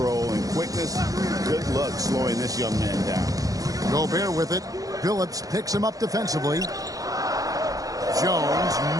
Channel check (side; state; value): left; late; 0.17 ms